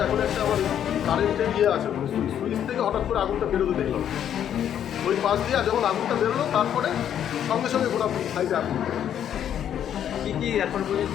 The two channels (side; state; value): right; quieter; 9.7 dB